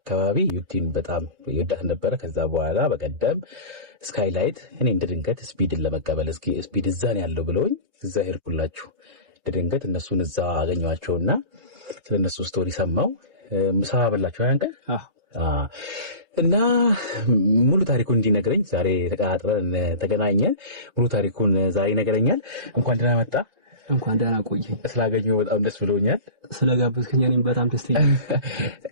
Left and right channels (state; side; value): late; left; 3.3 ms